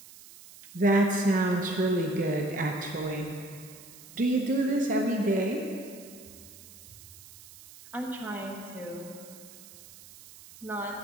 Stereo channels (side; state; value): right; noise; hiss, 19 dB below the sound